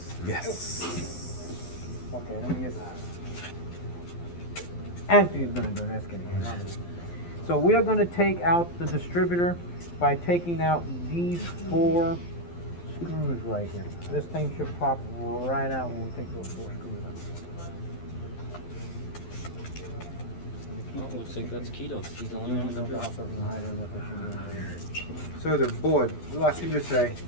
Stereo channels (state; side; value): late; right; 12 ms